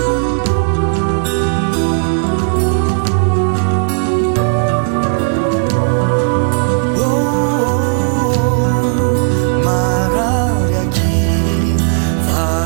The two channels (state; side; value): silent; left; digital silence